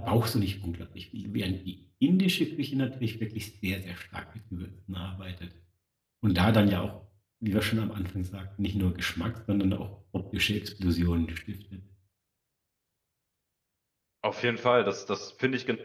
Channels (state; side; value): identical; both; correlation 1.00